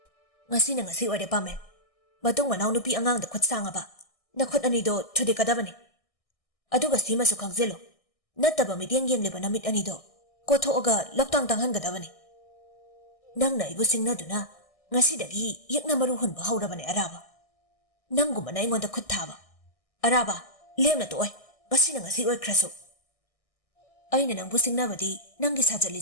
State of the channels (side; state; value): right; late; 1.6 ms